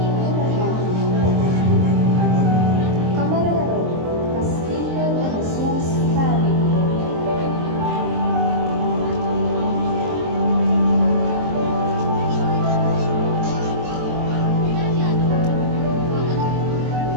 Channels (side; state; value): left; late; 23 ms